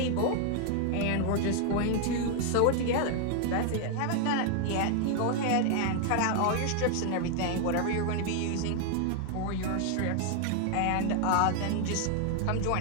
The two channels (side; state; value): both; different; correlation 0.00